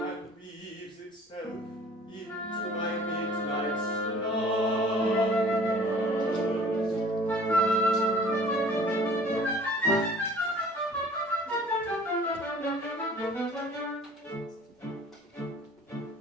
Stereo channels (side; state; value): both; normal; correlation 0.50